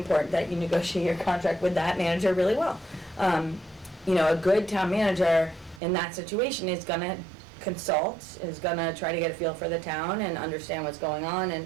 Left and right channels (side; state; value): left; drops out; at 5.8 s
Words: that you negotiate your contract with that manager really well. a good town manager in that situation is gonna consult, is gonna try to get a feel for the town and understand what's going on